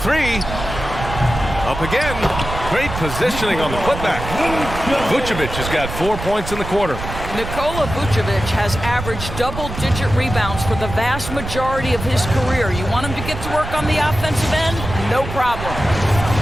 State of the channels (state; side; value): noise; right; rumble, 8 dB below the sound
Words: Up again. Great positioning on the putback. Vucevic has got 4 points in the quarter. Nikola Vucevic has averaged double-digit rebounds for the vast majority of his career. You want him to get to work on the offensive end? No problem.